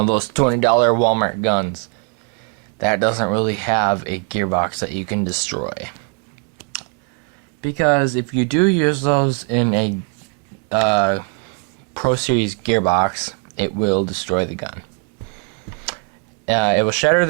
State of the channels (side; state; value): left; quieter; 37.7 dB